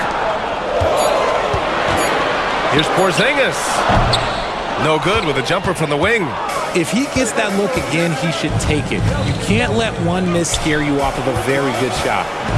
Here's Porzingis. No good with a jumper from the wing. If he gets that look again, he should take it. You can't let one miss scare you off of a very good shot.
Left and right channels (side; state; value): both; identical; correlation 1.00